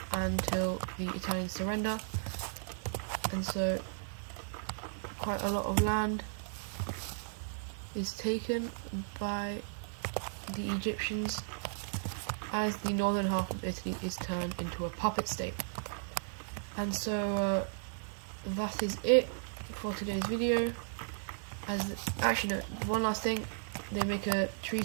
until the Italians surrender. And so quite a lot of land is taken by the Egyptians, as the northern half of Italy is turned into a puppet state. And so that is it for today's video. Actually no, one last thing, they make a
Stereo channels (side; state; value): left; silent; 54 dB below the other